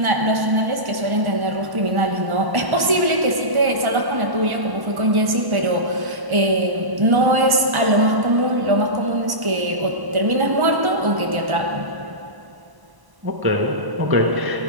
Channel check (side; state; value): left; late; 1.1 ms